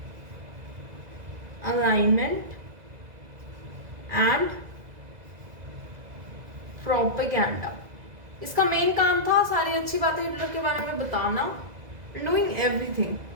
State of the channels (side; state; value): left; late; 2.0 ms